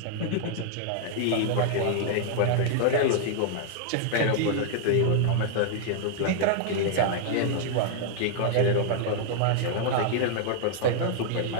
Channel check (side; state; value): both; different; correlation -0.01